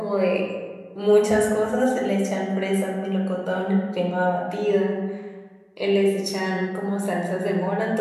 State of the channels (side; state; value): both; identical; correlation 1.00